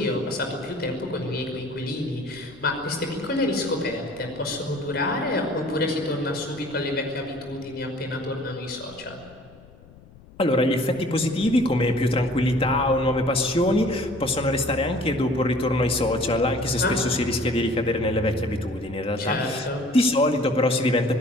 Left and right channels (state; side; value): noise; left; rumble, 23 dB below the sound